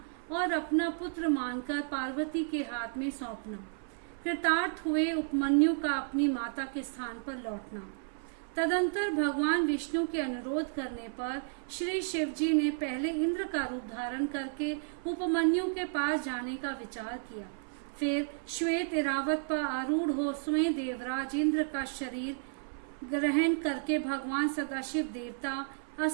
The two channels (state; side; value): silent; left; 56 dB below the other